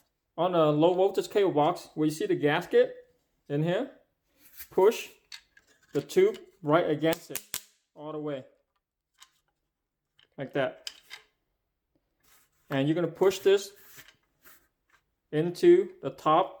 On the low voltage cable box, where you see the gasket in here, push the tube right against it all the way, like that. And you're going to push this into the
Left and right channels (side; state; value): both; identical; correlation 1.00